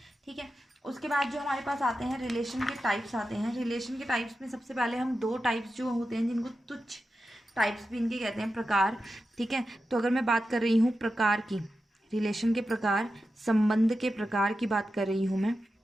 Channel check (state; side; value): normal; both; correlation 0.91